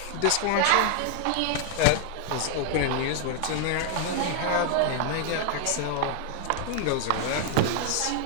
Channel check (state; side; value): different; both; correlation 0.00